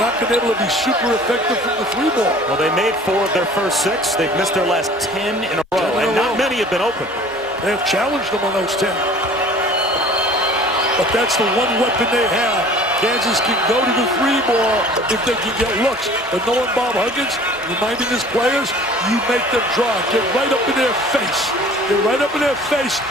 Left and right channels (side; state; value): both; normal; correlation 0.48